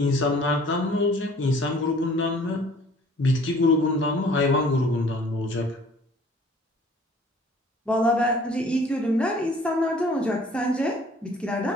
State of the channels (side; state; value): both; normal; correlation 0.53